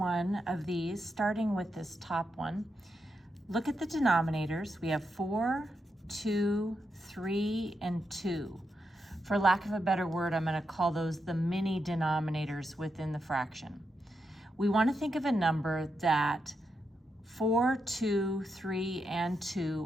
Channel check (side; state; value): both; normal; correlation 0.85